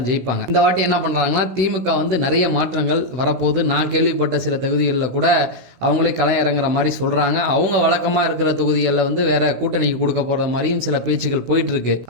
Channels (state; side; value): late; left; 16 ms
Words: ஜெயிப்பாங்க. இந்த வாட்டி என்ன பண்றாங்கன்னா திமுக வந்து நிறைய மாற்றங்கள் வரப்போது. நான் கேள்விப்பட்ட சில தொகுதிகளில் கூட அவங்களே களை இறங்குற மாதிரி சொல்றாங்க. அவங்க வழக்கமா இருக்கிற தொகுதிகளில் வந்து வேற கூட்டணிக்கு கொடுக்க போற மாதிரியும் சில பேச்சுகள் போயிட்டு இருக்கு.